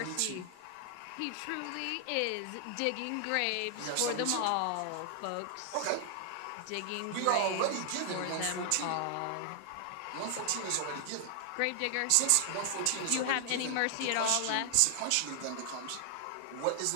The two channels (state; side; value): different; both; correlation 0.00